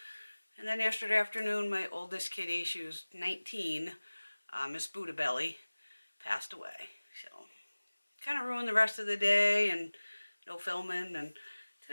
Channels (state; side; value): inverted; both; correlation -1.00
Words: And then yesterday afternoon, my oldest kitty, she was 19, Miss Budda Belly, passed away. So, kind of ruined the rest of the day and no filming. And